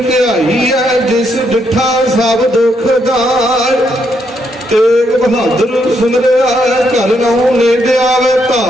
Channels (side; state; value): both; normal; correlation 0.76